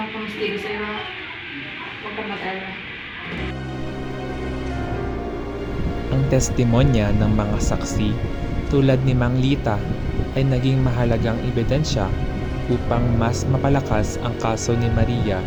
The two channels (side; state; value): both; identical; correlation 1.00